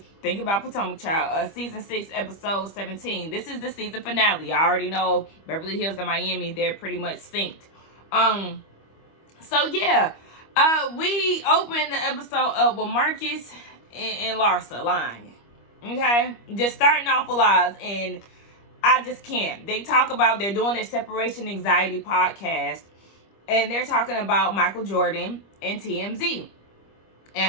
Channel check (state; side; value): late; right; 25 ms